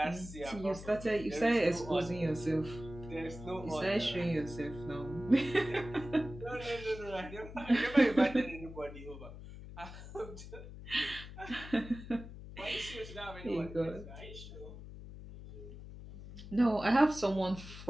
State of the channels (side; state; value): left; noise; hum, 13 dB below the sound